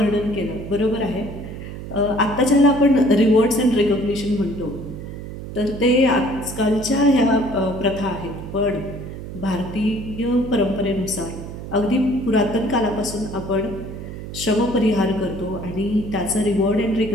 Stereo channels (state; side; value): noise; right; hum, 10 dB below the sound